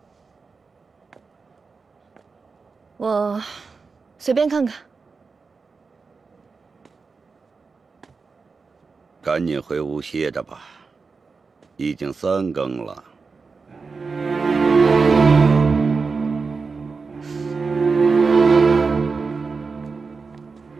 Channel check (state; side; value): quieter; left; 4.6 dB